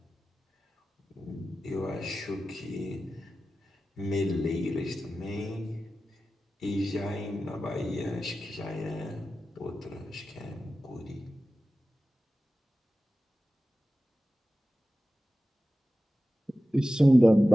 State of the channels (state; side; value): normal; both; correlation 0.94